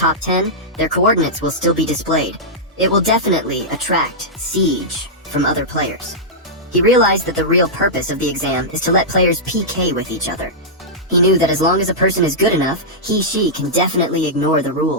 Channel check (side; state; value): both; normal; correlation -0.11